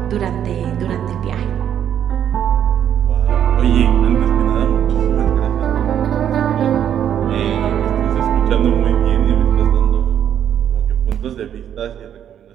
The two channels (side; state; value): left; quieter; 9.7 dB